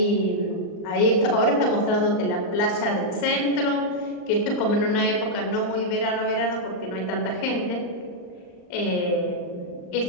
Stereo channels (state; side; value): late; right; 39 ms